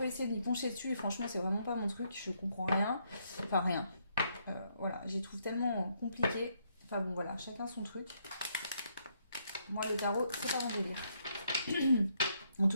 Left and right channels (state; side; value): inverted; both; correlation -0.74